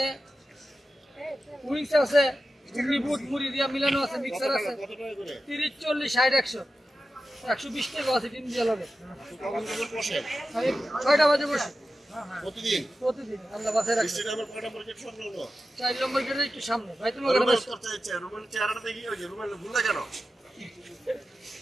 উইংস আছে বুট মুড়ি দিয়া মিলানো আছে মিক্সার আছে 30 40 60 100 120 টাকা আছে ডিম দিয়া লাগে 6টা বাজে বসে প্রতিদিন আল্লাহ বাসায় রাখছে 4 নম্বর গেটে একটু সামনে ভাই তুমি ওখানে বসো রুমের চেহারাটা দেখি ওই যে রুমের ভুল না কেন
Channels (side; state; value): both; normal; correlation 0.92